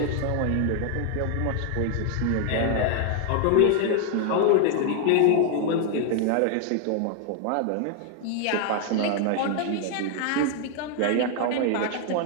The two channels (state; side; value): different; both; correlation 0.00